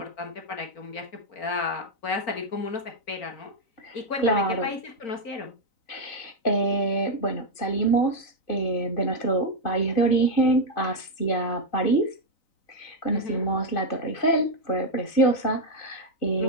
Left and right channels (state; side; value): late; right; 3.9 ms